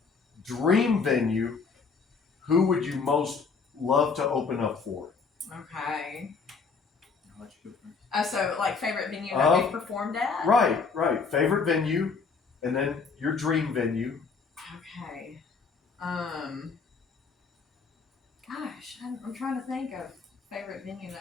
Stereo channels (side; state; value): right; quieter; 5.0 dB